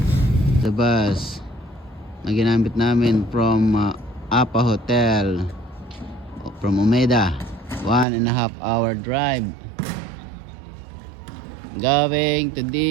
The bus na ginamit namin from Apa Hotel from Umeda, 1.5 hour drive going to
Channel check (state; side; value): drops out; left; at 8.1 s